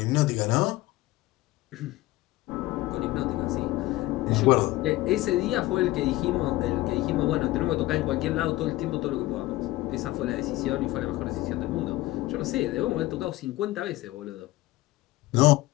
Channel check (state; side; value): quieter; right; 18.1 dB